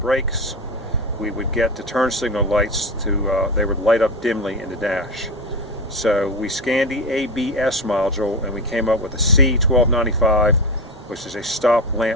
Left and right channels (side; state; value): both; normal; correlation 0.22